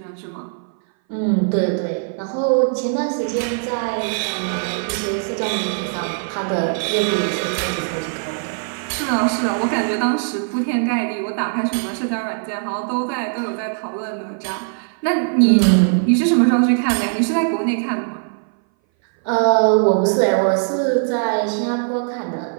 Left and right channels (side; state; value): left; silent; 59 dB below the other